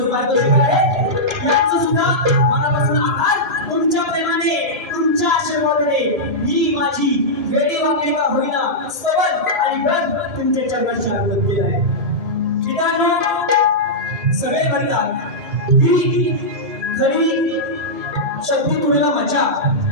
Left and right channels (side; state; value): left; late; 1.7 ms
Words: पारितोषिक आहे. यांचं सुद्धा मनापासून आभार. तुमच्या प्रेमाने तुमच्या आशीर्वादाने मी माझी वेळी वागणे का होईना स्तवन आणि गण तुमच्या चरणांशी अर्पण केलं आहे. मित्रांनो सगळे म्हणतात की खरी शक्ती तुला मजा